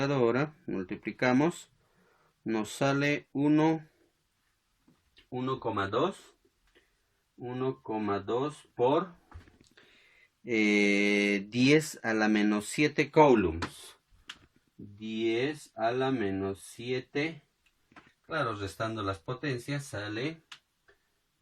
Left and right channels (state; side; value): identical; both; correlation 1.00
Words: multiplicamos, nos sale 1,2 por 10 a la menos 7 coulombs. 10 a la menos 7, claro, restando las potencias sale